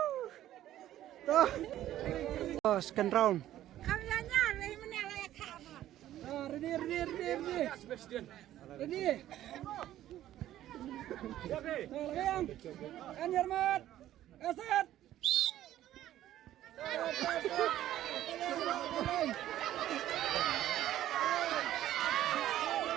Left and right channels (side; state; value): left; quieter; 13.1 dB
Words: Oh, second round.